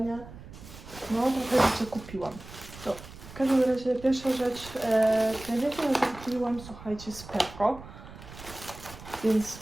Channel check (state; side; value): noise; right; rumble, 16 dB below the sound